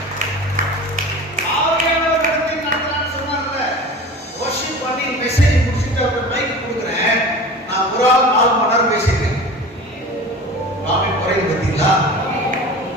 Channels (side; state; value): both; normal; correlation 0.36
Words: ஆவியானவர் நடத்தி நடத்தலாம்னு சொன்னார்ல, வர்ஷிப் பண்ணி மெசேஜ் முடிச்சுட்டு அவர் மைக் கொடுக்குறேன். நான் ஒரு ஆள் 4 மணி நேரம் பேசிட்டேன். நாமே குறைந்து பார்த்தீங்களா?